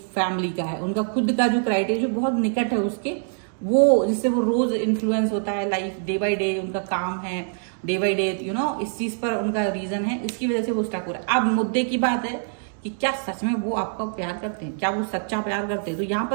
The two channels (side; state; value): left; silent; digital silence